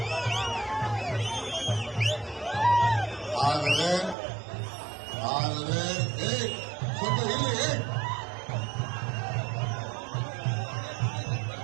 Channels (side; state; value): left; drops out; at 4.2 s